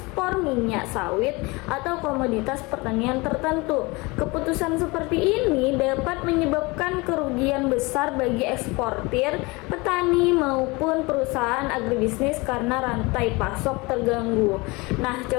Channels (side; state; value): right; quieter; 25.0 dB